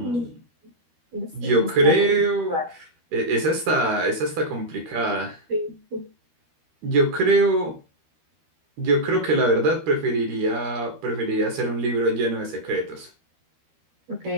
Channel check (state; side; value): late; left; 13 ms